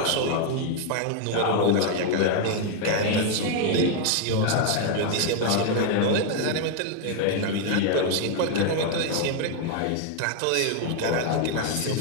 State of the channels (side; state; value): both; different; correlation 0.00